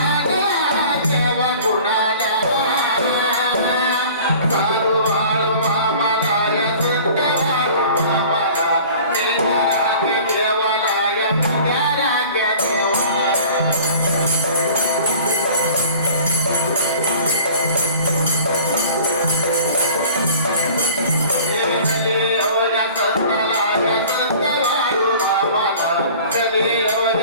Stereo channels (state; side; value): inverted; both; correlation -0.45